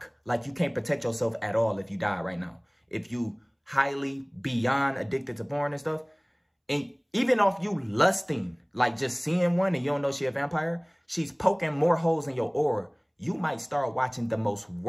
Like you can't protect yourself at all if you die right now. If you highly beyond addicted to porn and stuff. And even off you lusting, like just seeing one and you don't know she a vampire, she's poking more holes in your aura. You might start watching the most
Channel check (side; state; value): both; identical; correlation 1.00